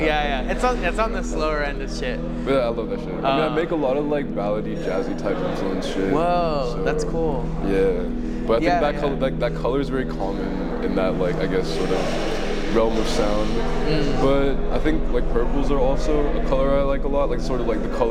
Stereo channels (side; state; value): both; identical; correlation 1.00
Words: Yeah. It's on the slower end of shit. But yeah, I love that shit. I mean, I make a lot of like ballady, jazzy type influence shit. Whoa, so, that's cool. Yeah. But I think that color is very common in that, like, I guess sort of realm of sound. But I think like purples are also a color I like a lot, like sort of like the